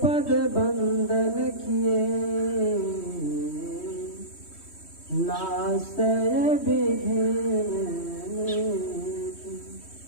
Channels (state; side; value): late; right; 3.1 ms